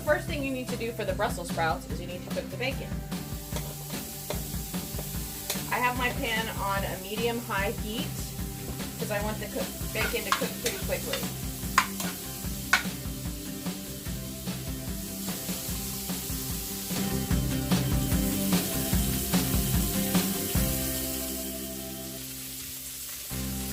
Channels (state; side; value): identical; both; correlation 1.00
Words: thing you need to do for the Brussels sprouts is you need to cook the bacon. I have my pan on a medium-high heat because I want the bacon to cook pretty quickly.